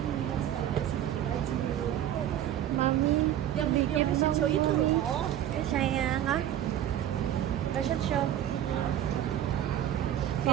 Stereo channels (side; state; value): left; quieter; 11.4 dB